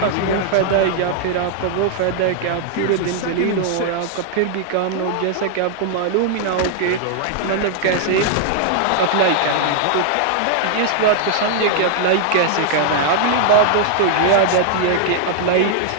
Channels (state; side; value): different; both; correlation -0.01